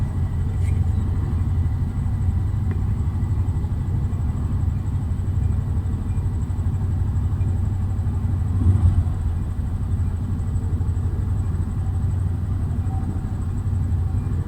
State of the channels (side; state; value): both; identical; correlation 1.00